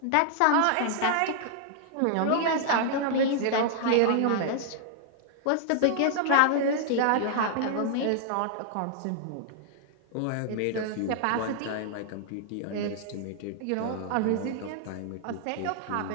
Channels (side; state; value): both; different; correlation -0.01